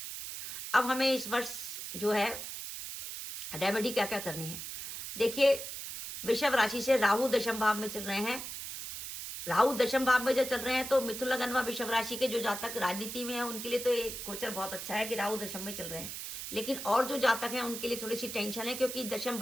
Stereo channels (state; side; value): noise; right; hiss, 7 dB below the sound